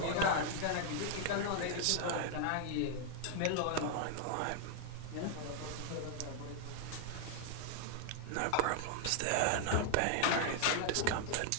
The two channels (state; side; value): different; both; correlation 0.00